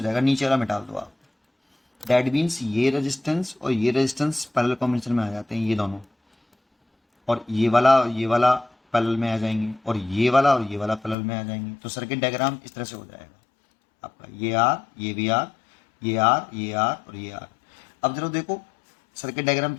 जाएगा, नीचे वाला मिटा दो आप। दैट मीन्स ये रेजिस्टेंस और ये रेजिस्टेंस पैरेलल कॉम्बिनेशन में आ जाते हैं ये दोनों, और ये वाला पैरेलल में आ जाएंगे, और ये वाला पैरेलल में आ जाएंगे। तो सर्किट डायग्राम इस तरह से हो जाएगा आपका, ये आर, ये भी आर, ये आर, ये आर और ये आर। अब जरा देखो सर्किट डायग्राम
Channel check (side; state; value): right; drops out; at 11.2 s